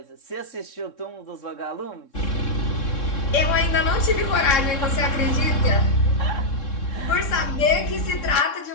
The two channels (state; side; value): late; right; 3.7 ms